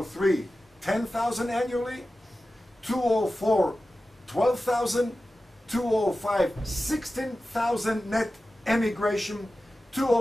10,000 annually. 2004, 12,000. 2005, 16,000 net emigration.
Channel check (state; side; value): normal; both; correlation 0.94